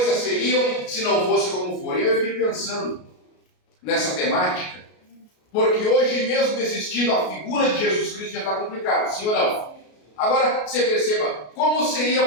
seriam se não fosse como foram. E eu fiquei pensando nessa temática, porque hoje mesmo existindo a figura de Jesus Cristo já está complicado, sim ou não? Agora, você perceba, como seria,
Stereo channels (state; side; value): late; right; 33 ms